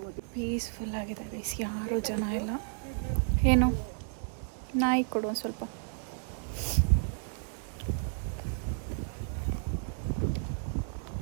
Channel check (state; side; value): silent; left; 56 dB below the other